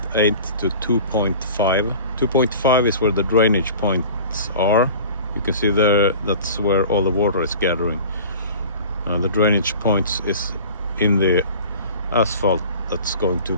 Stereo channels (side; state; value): both; inverted; correlation -0.41